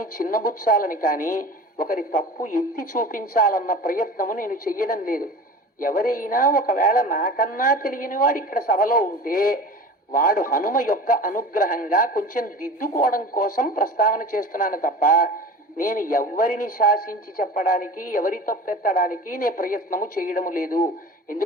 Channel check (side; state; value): both; normal; correlation 0.37